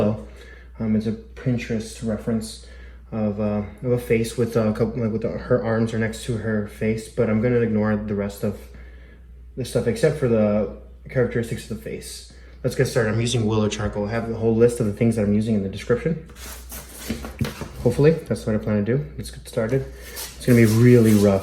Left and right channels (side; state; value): both; identical; correlation 1.00